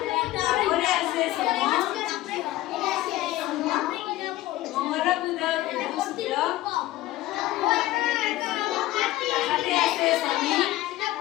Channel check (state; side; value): quieter; right; 16.3 dB